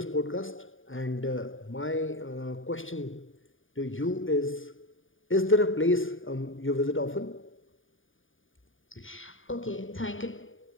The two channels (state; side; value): late; right; 0.57 ms